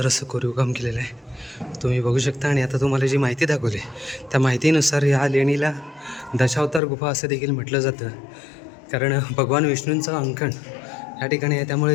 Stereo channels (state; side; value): drops out; right; at 6.8 s